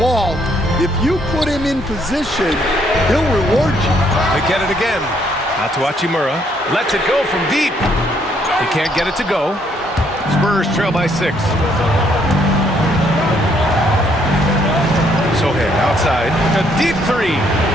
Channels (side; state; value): both; normal; correlation 0.69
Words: if you put him in position, he'll reward you. They get it again. Out to Hachimura. Lets it go from deep. He can't get it to go. Spurs trail by 6. Sohan outside. A deep 3.